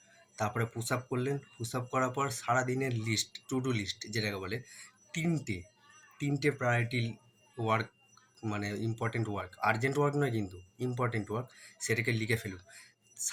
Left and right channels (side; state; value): both; identical; correlation 1.00